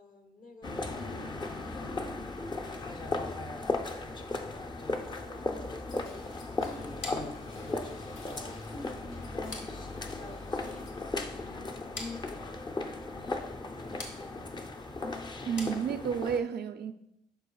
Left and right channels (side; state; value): both; normal; correlation 0.65